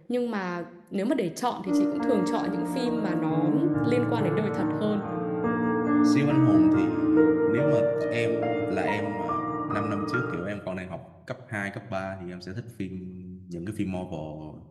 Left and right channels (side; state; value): both; identical; correlation 1.00